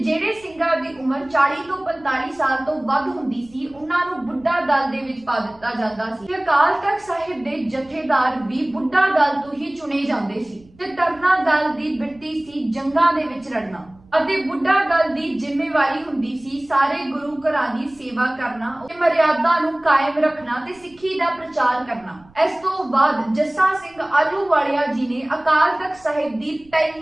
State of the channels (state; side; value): noise; right; rumble, 28 dB below the sound